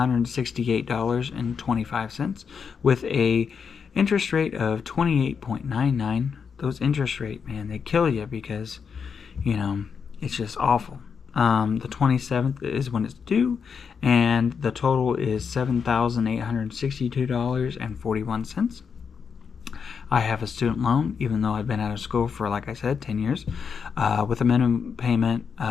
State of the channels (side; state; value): right; quieter; 6.3 dB